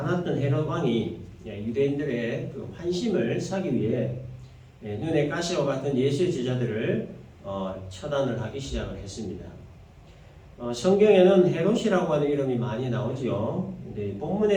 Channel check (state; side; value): identical; both; correlation 1.00